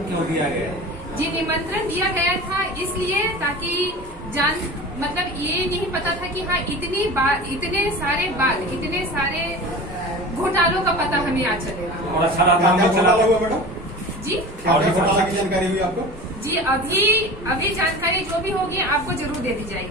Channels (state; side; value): normal; both; correlation 0.35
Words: क्यों दिया गया? जी, निमंत्रण दिया गया था इसलिए ताकि मतलब ये नहीं पता था कि हाँ, इतने सारे घोटालों का पता हमें आज चलेगा। और अच्छा रहा जी, और जानकारी हुई आपको? जी, अभी जानकारी जो भी होगी आपको जरूर दे दी